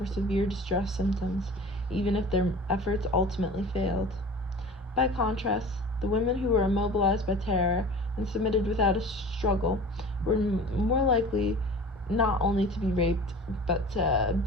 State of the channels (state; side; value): normal; both; correlation 0.40